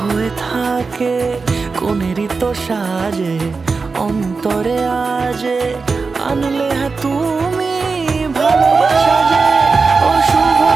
থাকে। কোনেরই তো সাজে অন্তরে আজে, আনলে হ্যাঁ তুমি ভালোবাসা যে। ও শুভ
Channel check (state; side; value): quieter; left; 4.5 dB